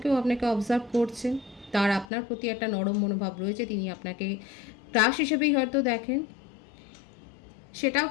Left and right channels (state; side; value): drops out; right; at 2.1 s